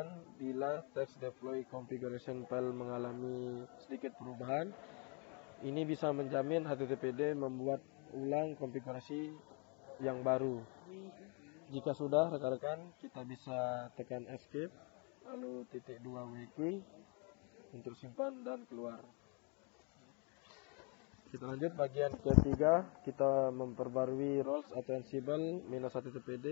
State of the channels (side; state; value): right; quieter; 35.5 dB